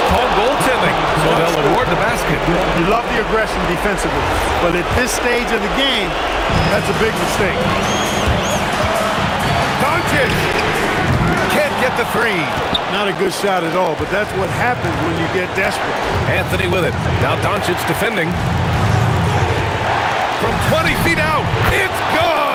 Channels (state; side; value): identical; both; correlation 1.00